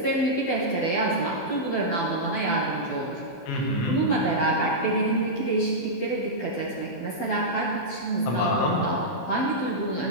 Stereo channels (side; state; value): right; late; 16 ms